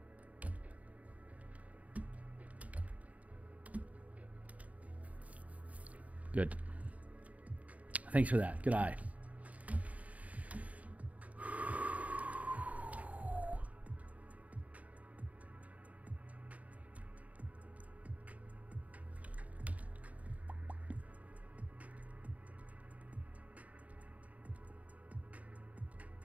Good. Thanks for that. Good eye.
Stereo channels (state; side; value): late; left; 0.069 ms